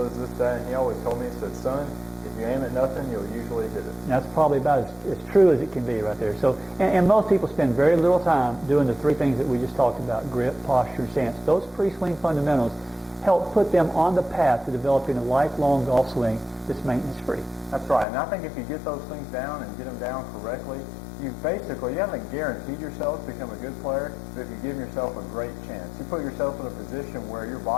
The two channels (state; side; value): drops out; right; at 18.1 s